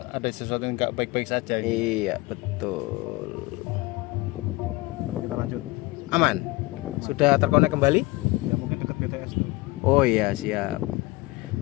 ada sesuatu yang nggak baik-baik saja gitu. Iya, betul. Kita lanjut. Aman. Sudah terkonek kembali? Ya mungkin dekat BTS tuh. Oh iya, siap.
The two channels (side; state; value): right; quieter; 21.8 dB